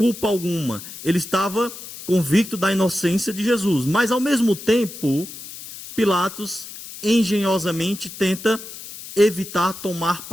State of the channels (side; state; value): left; noise; hiss, 13 dB below the sound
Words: alguma. Ele estava convicto da inocência de Jesus. Mas, ao mesmo tempo, Pilatos engenhosamente tenta evitar tomar